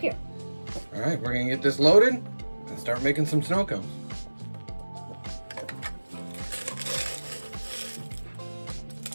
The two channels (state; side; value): inverted; both; correlation -1.00